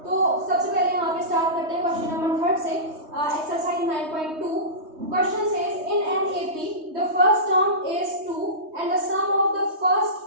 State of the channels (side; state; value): left; late; 3.2 ms